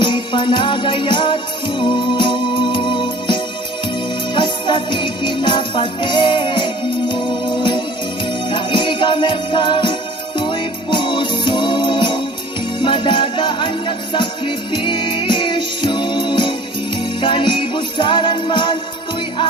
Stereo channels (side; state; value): both; normal; correlation 0.47